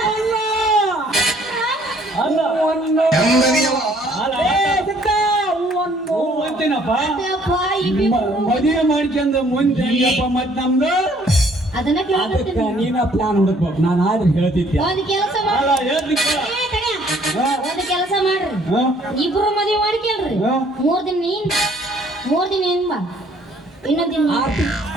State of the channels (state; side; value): normal; both; correlation 0.61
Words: ಅಲ್ಲ ಅಂತೀನಪ್ಪ ಮದುವೆ ಮಾಡ್ಕೊಂಡ್ ಮುಂದೆ ಹೆಂಗಪ್ಪ ಮತ್ ನಮ್ದು ಅದನ್ನ ಅದಕ್ಕೆ ಕೇಳ್ತೀನಿ ನೀನ ಪ್ಲಾನ್ ಹುಡುಕ್ಬೇಕು ನಾನು ಆದ್ರೆ ಹೇಳ್ತಿದ್ದೆ ಒಂದ್ ಕೆಲಸ ಅಲ್ಲ ಮಾಡಿ ಹೇಳ್ತಿಕ್ಕ ಒಂದ್ ಕೆಲಸ ಮಾಡ್ರಿ ಹಾ? ಇಬ್ರು ಮದುವೆ ಮಾಡ್ಕೇಳ್ರಿ ಹಾ? 3 ದಿನ ನೀನ್ 3 ದಿನ ಏನ್ ಬಾ ಇನ್ನೊಂದ್ ದಿನ ನೀನ್.